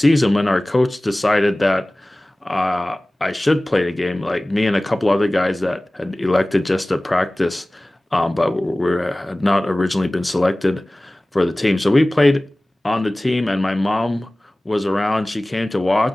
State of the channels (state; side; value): normal; both; correlation 0.98